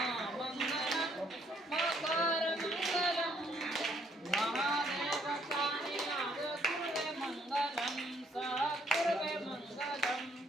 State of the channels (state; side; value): normal; both; correlation 0.67